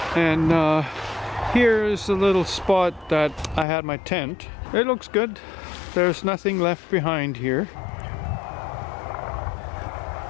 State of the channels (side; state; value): right; drops out; at 3.7 s